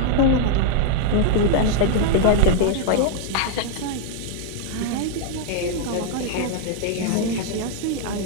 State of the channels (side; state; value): both; different; correlation 0.00